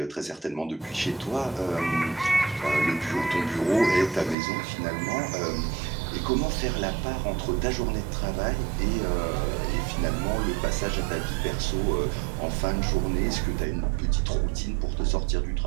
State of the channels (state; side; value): drops out; left; at 4.4 s